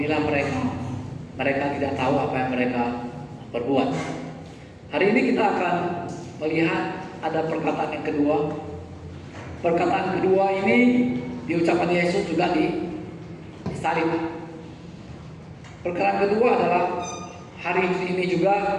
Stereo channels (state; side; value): identical; both; correlation 1.00